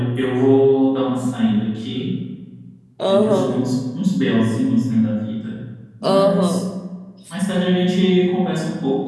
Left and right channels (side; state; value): both; identical; correlation 1.00